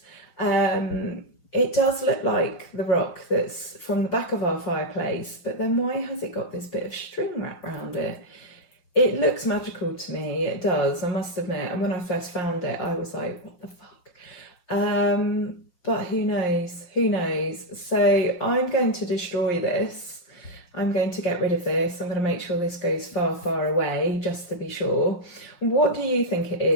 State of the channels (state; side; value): late; right; 5.5 ms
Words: It does look like the rock that's from the back of our fireplace, but then why has it got this bit of string wrapped around it? It looks magical to me, it does, I must admit. And when I first found it, I was like, what the fuck? But who knows? So I'm going to destroy this. I'm going to get rid of this. I'm going to make sure this goes far, far away, just to be sure. What do you think it